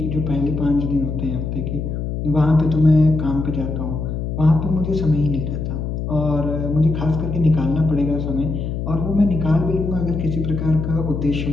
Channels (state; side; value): noise; left; hum, 3 dB below the sound